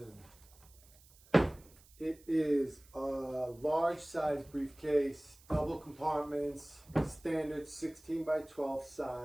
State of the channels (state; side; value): noise; right; hiss, 26 dB below the sound